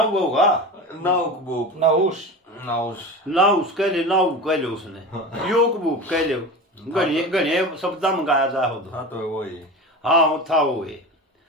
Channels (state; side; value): normal; both; correlation 0.29